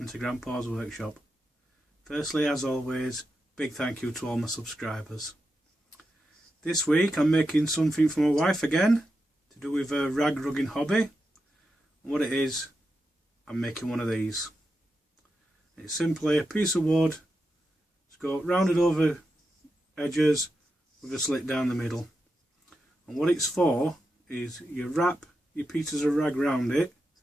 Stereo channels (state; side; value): normal; both; correlation 0.88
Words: to Grandpa's Workshop. Firstly, as always, big thank you to all my subscribers. This week I'm making something for my wife again, to do with her rag rugging hobby. And what it is, I'm making one of these. It's simply a piece of wood, it's got rounded over edges with a slit down the middle. And what it's for is you wrap your pieces of rag round it,